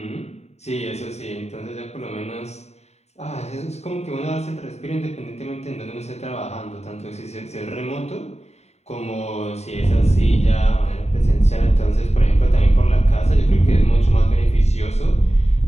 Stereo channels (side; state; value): right; late; 0.32 ms